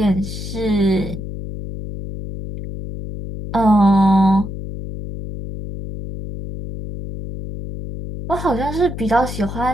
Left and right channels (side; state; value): left; noise; hum, 8 dB below the sound